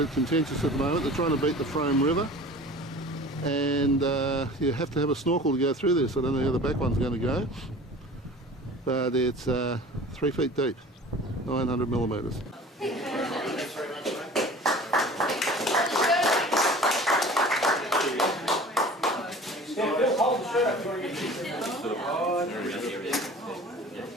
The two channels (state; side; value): normal; both; correlation 0.42